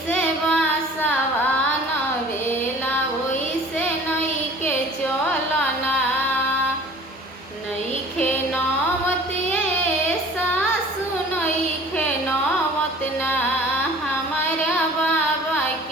बासवा नवेला वैसे नई के चलो ना। नईखे नौवत ये सासु नईखे नौवत ना, हमारा बाबा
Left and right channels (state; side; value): normal; both; correlation 0.46